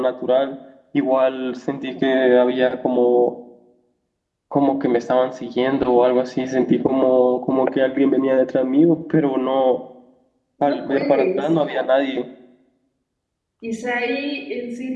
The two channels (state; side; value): identical; both; correlation 1.00